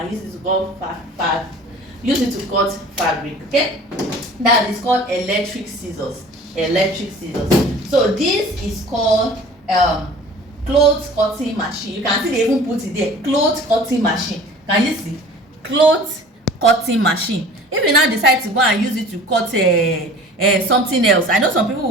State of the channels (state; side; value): normal; both; correlation 0.45